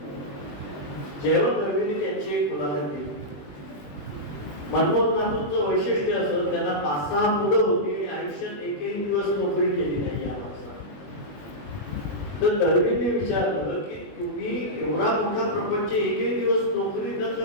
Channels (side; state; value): right; late; 20 ms